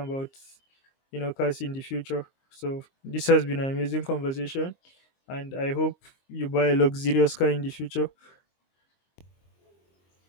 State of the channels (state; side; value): late; right; 22 ms